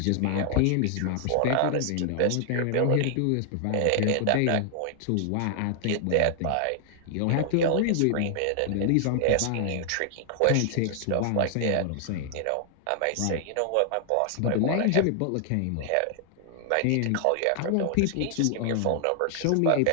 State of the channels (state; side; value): different; both; correlation 0.00